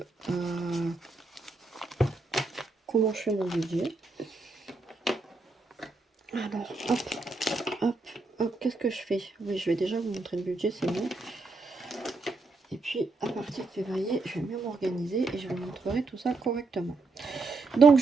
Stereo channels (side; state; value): left; quieter; 3.5 dB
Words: comment je fais mon budget. Alors, hop, hop, hop, qu'est-ce que je fais? Oui, je vais déjà vous montrer le budget, c'est bon. Et puis, à partir de février, je vais mieux m'organiser et je vous montrerai tout ça correctement. Donc,